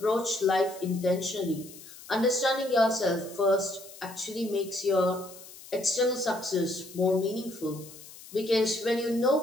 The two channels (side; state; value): left; noise; hiss, 18 dB below the sound